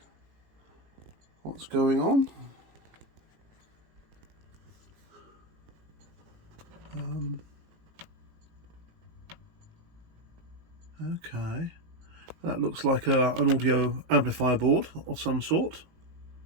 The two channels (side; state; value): left; late; 18 ms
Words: what's going on. Okay, that looks like an audio amplifier board of some sort.